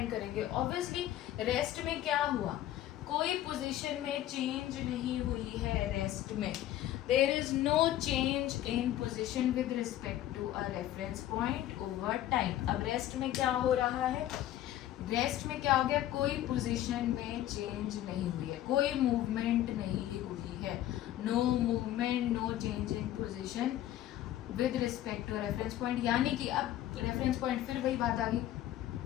करेंगे, ऑब्वियसली रेस्ट में क्या हुआ, कोई पोजीशन में चेंज नहीं हुई है, रेस्ट में there is no change in position with respect to a reference point over time. अब रेस्ट में क्या हो रहा है, रेस्ट में क्या हो गया, कोई पोजीशन में चेंज नहीं हुई है, कोई मूवमेंट नहीं हुई है, no movement, no change in position with respect to reference point. यानी कि अब रेफरेंस पॉइंट, फिर वही बात आ गई,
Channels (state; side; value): quieter; right; 13.1 dB